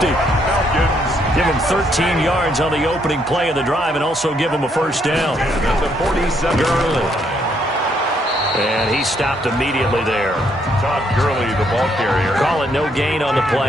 Give him 13 yards on the opening play of the drive and also give him a 1st down. At the 47. Gurley. And he stopped immediately there. Todd Gurley, the ball carrier. Call it no gain on the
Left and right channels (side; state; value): both; normal; correlation 0.72